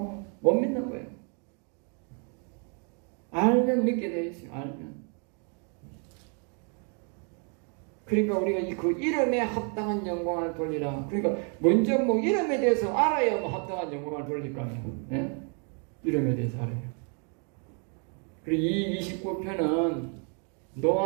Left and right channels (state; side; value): quieter; left; 39.5 dB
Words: 못 믿는 거예요. 알면 믿게 돼 있어요. 알면. 그러니까 우리가 그 이름에 합당한 영광을 돌리라. 그러니까 먼저 이름에 대해서 알아야 합당한 영광을 돌릴 거 아니에요. 네? 이름에 대해서 알아요. 그리고 이 29편은